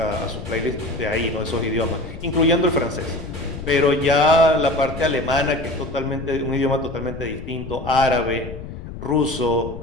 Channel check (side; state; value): left; noise; rumble, 11 dB below the sound